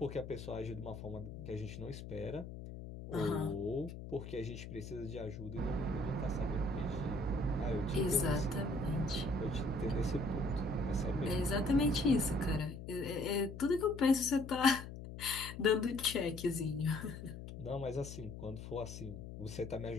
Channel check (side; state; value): left; noise; hum, 10 dB below the sound